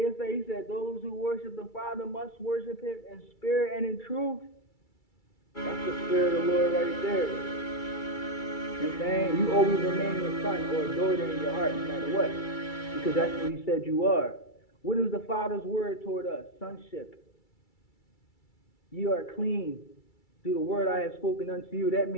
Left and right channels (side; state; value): right; late; 2.3 ms